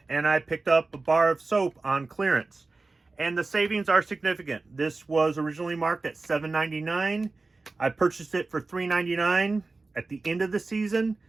and I picked up a bar of soap on clearance. And the savings are significant. This was originally marked at $7.99. I purchased it for $3.99 at the end of the season.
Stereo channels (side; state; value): left; quieter; 3.6 dB